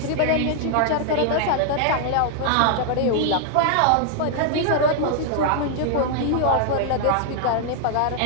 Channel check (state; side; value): different; both; correlation 0.00